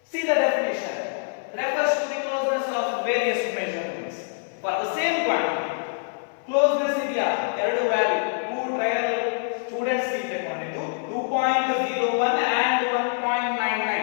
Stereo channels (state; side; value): silent; right; 58 dB below the other